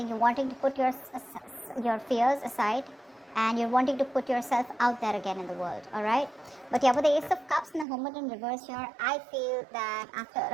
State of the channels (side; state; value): left; drops out; at 7.9 s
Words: you're wanting to put your fears aside, and you're wanting to put yourself out there again in the world. All right, but yeah, with the Ace of Cups and the Hermit in reverse here, I feel that after